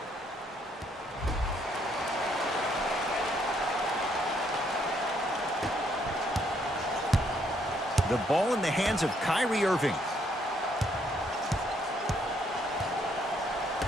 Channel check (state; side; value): normal; both; correlation 0.70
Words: The ball in the hands of Kyrie Irving.